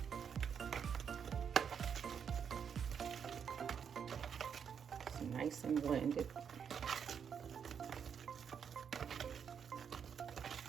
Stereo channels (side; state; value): left; quieter; 7.4 dB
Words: nice and blended.